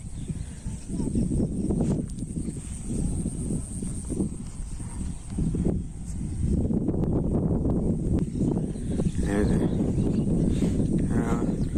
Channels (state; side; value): identical; both; correlation 1.00